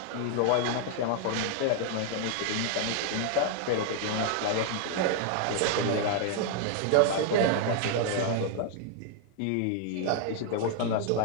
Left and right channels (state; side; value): different; both; correlation 0.00